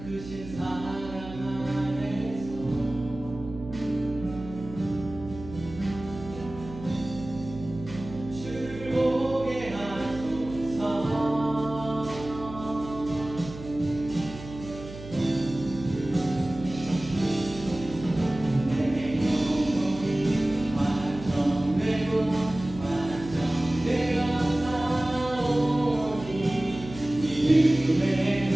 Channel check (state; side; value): noise; right; hum, 13 dB below the sound